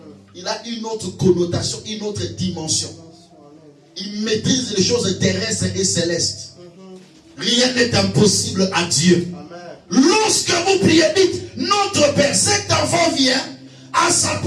Il a une autre connotation, une autre dimension. Il maîtrise les choses terrestres et célestes. Rien n'est impossible à Dieu. Lorsque vous priez, dites, notre Père, cet enfant vient, en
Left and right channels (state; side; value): identical; both; correlation 1.00